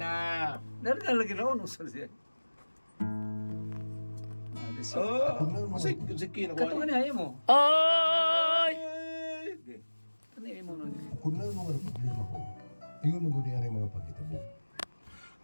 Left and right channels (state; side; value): inverted; both; correlation -1.00